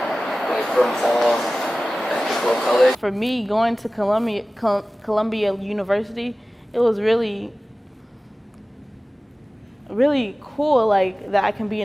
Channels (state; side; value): normal; both; correlation 0.97